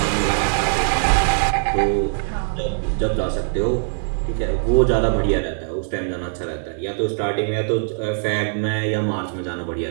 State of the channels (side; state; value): left; silent; digital silence